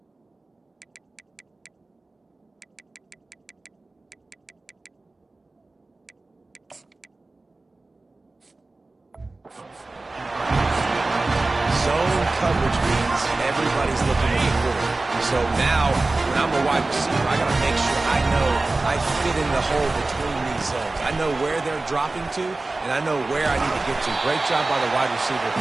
Zone coverage means everybody's looking at the quarter. So now, when I'm a wide receiver, I got to make sure I know I fit in the hole between these zones. I know where they're dropping to, and I know where I need to get to. Great job by the wide receiver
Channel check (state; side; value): quieter; left; 3.2 dB